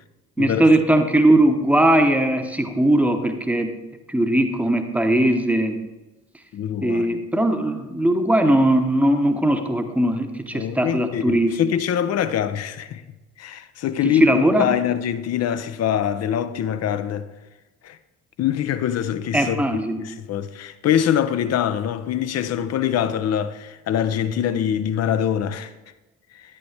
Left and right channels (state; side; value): normal; both; correlation 0.62